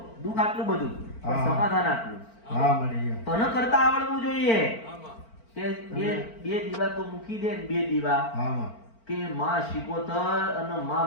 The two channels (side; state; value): right; late; 4.4 ms